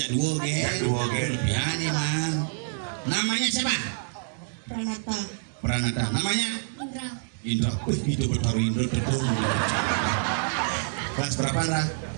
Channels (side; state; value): left; silent; digital silence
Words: 2 kan. Biar nih man. Namanya siapa? Pranata. Namanya? Indra. Itu betul Indra terus. Kelas berapa lah?